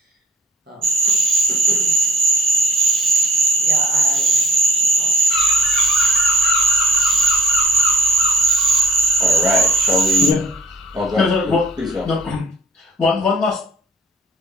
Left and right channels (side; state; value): both; normal; correlation 0.54